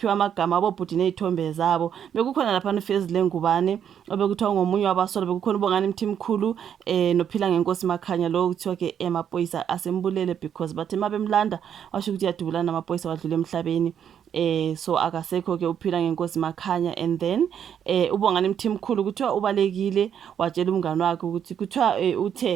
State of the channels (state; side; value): quieter; left; 8.8 dB